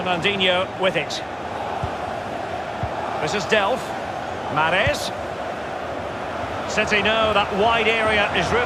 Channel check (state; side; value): identical; both; correlation 1.00